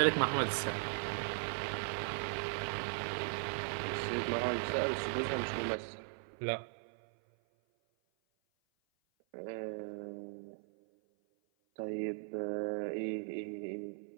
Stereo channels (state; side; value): silent; left; 52 dB below the other